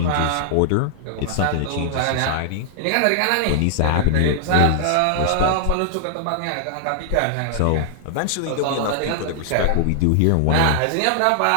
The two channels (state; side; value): different; both; correlation -0.01